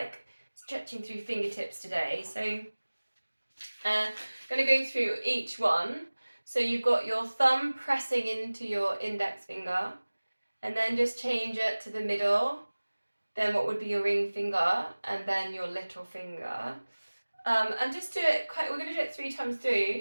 stretching through fingertips today. So going to go through each one. So you've got your thumb pressing into your index finger, and then just change it to the middle. Then what would be your ring finger, and then your little finger. And just do it we're going to do it 3 times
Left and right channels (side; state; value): both; inverted; correlation -1.00